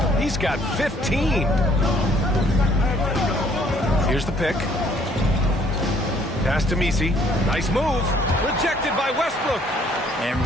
He's got 15. Here's the pick. Pass to MiMi. Nice move. Rejected by Westbrook. And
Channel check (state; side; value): normal; both; correlation 0.62